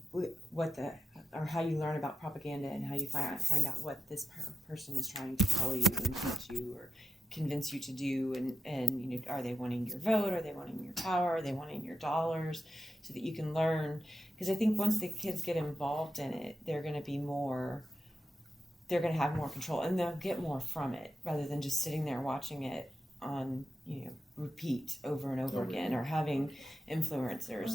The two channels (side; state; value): both; normal; correlation 0.90